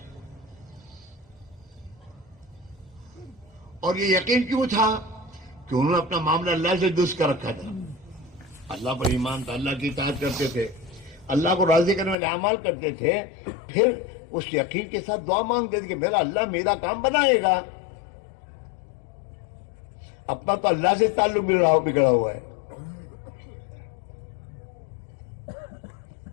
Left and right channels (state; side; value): drops out; right; at 12.2 s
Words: اور یہ یقین کیوں تھا؟ کہ انہوں نے اپنا معاملہ اللہ سے درست کر رکھا تھا. اللہ پر ایمان تھا, اللہ کی اطاعت کرتے تھے, اللہ کو راضی کرنے والے اعمال کرتے تھے. پھر اس یقین کے ساتھ دعا مانگتے تھے کہ میرا اللہ میرا کام بنائے گا. اپنا تو اللہ سے تعلق بگڑا ہوا ہے.